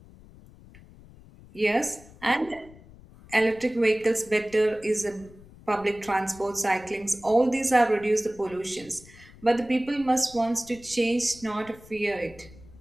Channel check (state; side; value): noise; left; rumble, 22 dB below the sound